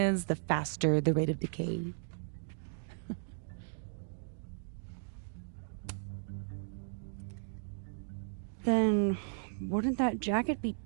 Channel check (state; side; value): silent; left; digital silence